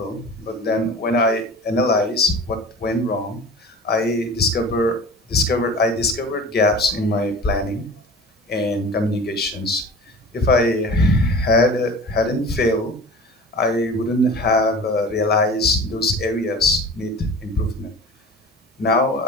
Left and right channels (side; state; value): both; normal; correlation 0.38